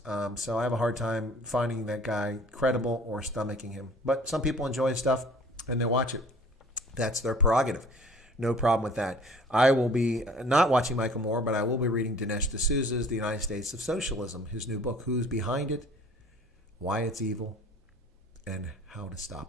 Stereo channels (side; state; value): both; normal; correlation 0.50